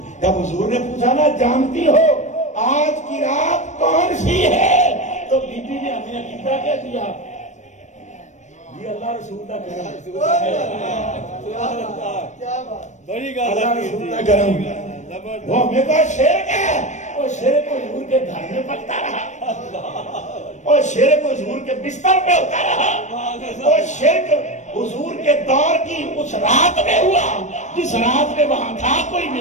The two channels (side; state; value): right; late; 0.34 ms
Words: جب حضور نے پوچھا نا جانتی ہو آج کی رات کون سی ہے تو بی بی نے ہمیں عقیدہ کہہ دیا یہ اللہ رسول کا کرم. بڑی اللہ رسول کا کرم. وہ ہمیں کا شرک ہے وہ شرک حضور کے گھر میں پکتا رہا اور شرک حضور کے بستر پہ ہوتا رہا اور شرک حضور کے دور کی اس رات میں ہوا جس رات میں وہاں تھا کوئی